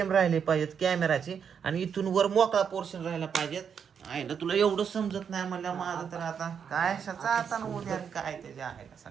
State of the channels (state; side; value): quieter; left; 7.2 dB